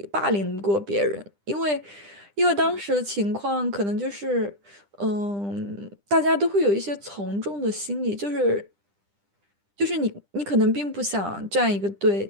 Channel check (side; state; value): left; late; 10 ms